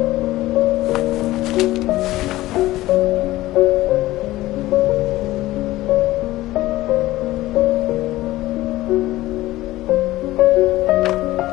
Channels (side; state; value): right; quieter; 17.0 dB